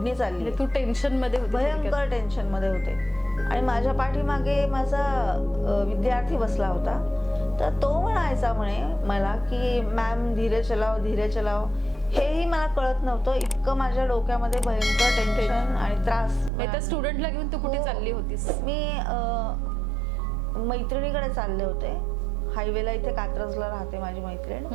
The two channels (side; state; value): left; drops out; at 16.5 s